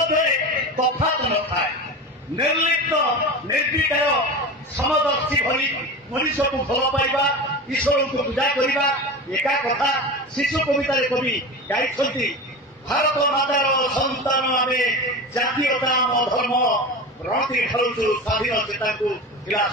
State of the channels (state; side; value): normal; both; correlation 0.28